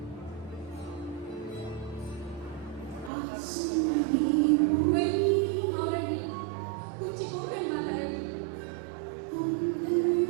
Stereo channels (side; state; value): left; drops out; at 3.1 s